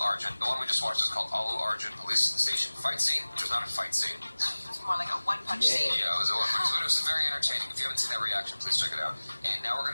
Arjun. The one we just watched is called Allu Arjun Police Station Fight Scene, which was not a fight scene. It's more like a one-punch scene. Yeah, it was a one-punch scene. But it was very entertaining. If you haven't seen that reaction, please check it out. And now we're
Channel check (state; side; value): inverted; both; correlation -1.00